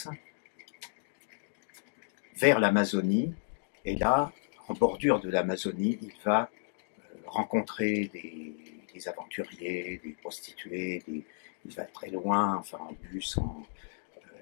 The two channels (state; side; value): silent; right; digital silence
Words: vers l'Amazonie, et là, en bordure de l'Amazonie, il va rencontrer des aventuriers, des prostituées, il va très loin, enfin en bus, en